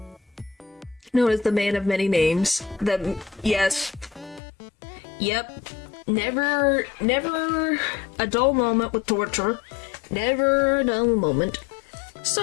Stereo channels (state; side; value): drops out; right; at 4.4 s